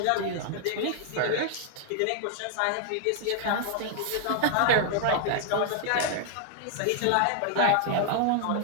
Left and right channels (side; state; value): both; different; correlation 0.00